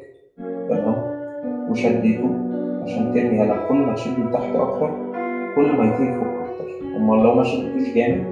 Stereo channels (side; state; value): both; identical; correlation 1.00